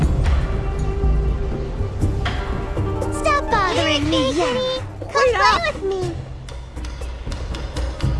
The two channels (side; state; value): both; identical; correlation 1.00